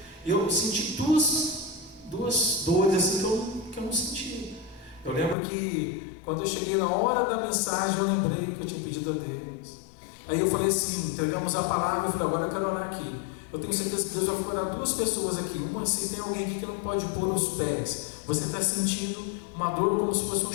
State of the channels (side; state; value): right; drops out; at 5.4 s